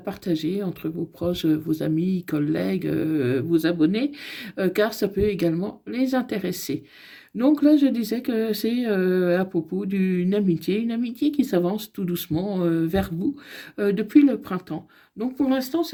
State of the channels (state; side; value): identical; both; correlation 1.00